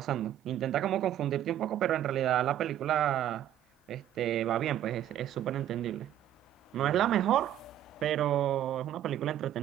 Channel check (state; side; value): quieter; left; 11.7 dB